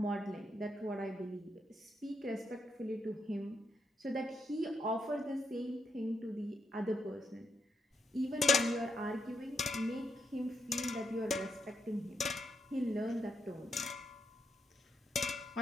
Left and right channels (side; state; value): both; normal; correlation 0.80